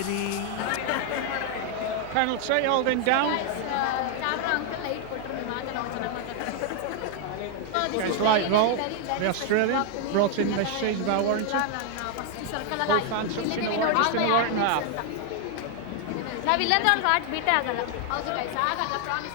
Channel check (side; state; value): both; different; correlation 0.00